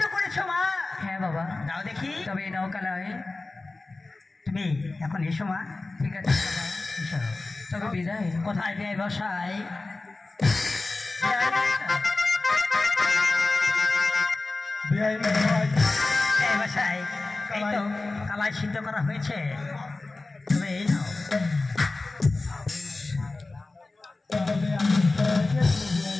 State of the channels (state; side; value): quieter; right; 3.3 dB